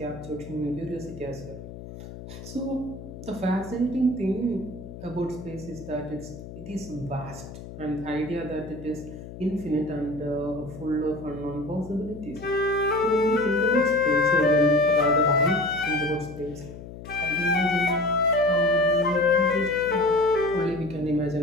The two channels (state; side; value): noise; left; hum, 13 dB below the sound